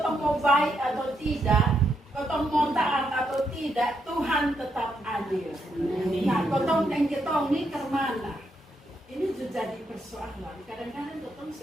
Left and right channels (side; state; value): both; normal; correlation 0.79